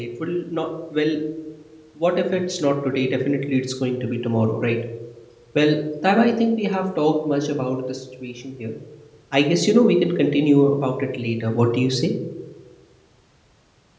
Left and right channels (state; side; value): identical; both; correlation 1.00